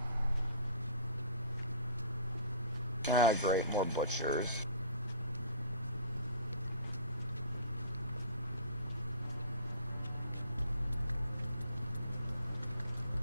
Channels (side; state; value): both; inverted; correlation -0.45